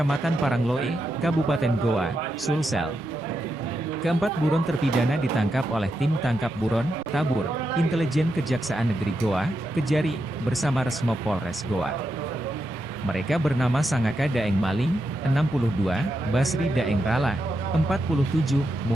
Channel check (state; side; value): normal; both; correlation 0.85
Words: Parangloe, Kabupaten Goa, Sulsel. Keempat buron terpidana ditangkap oleh tim tangkap buron, Tabur, Intelijen Kejaksaan Negeri Goa, Kejari, bersama Resmo Polres Goa. Mereka bernama Sangaka Daeng Maling, 62, Basri Daeng Rala, 47,